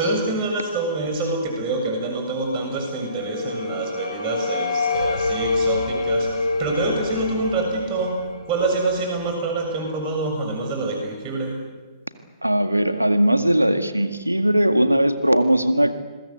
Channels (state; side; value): inverted; both; correlation -0.72